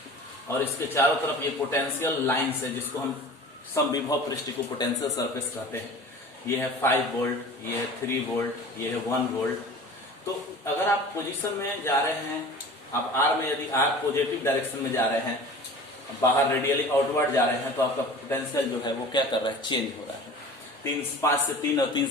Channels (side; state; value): both; normal; correlation 0.40